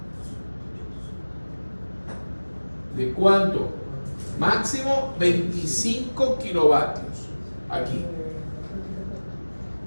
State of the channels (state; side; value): inverted; both; correlation -1.00